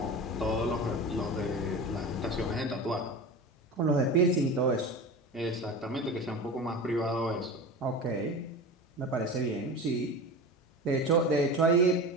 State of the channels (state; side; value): normal; both; correlation 0.30